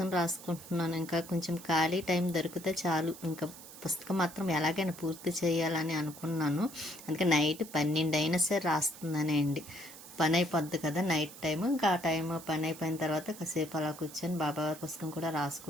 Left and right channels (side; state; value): right; noise; hiss, 16 dB below the sound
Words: రాసుకుంటున్నాను. ఇంకా కొంచెం ఖాళీ టైం దొరికితే చాలు, ఇంకా పుస్తకం మాత్రం ఎలాగైనా పూర్తి చేయాలని అనుకున్నాను. అందుకే నైట్ 12 అయినా సరే రాస్తున్నానే అండి. పని అయిపోద్ది కదా నైట్ టైం. ఇంకా ఆ టైం పని అయిపోయిన తర్వాత కాసేపు అలా కూర్చొని బాబావారి పుస్తకం కూడా